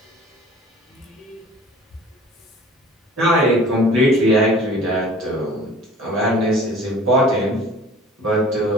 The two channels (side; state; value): both; normal; correlation 0.47